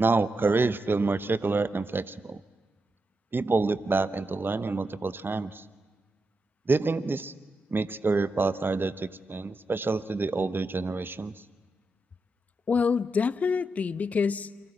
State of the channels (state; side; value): normal; both; correlation 0.86